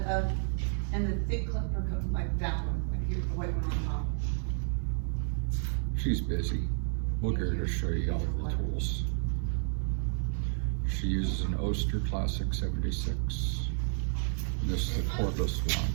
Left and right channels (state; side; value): silent; left; 57 dB below the other